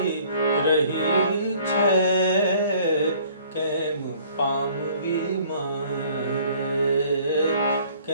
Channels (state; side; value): inverted; both; correlation -0.55